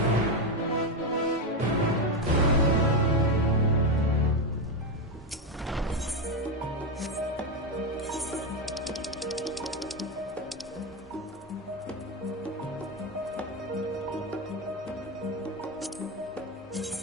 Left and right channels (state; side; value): normal; both; correlation 0.10